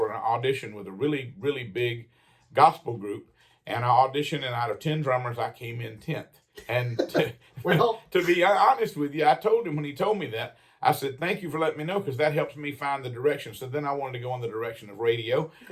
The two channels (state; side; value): identical; both; correlation 1.00